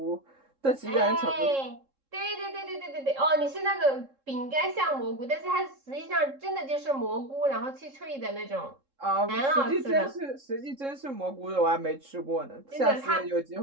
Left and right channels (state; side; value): late; left; 3.7 ms